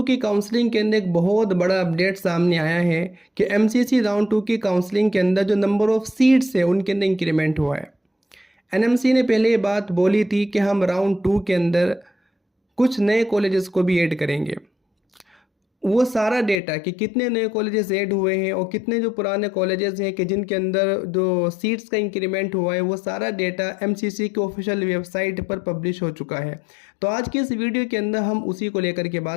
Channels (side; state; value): right; drops out; at 16.6 s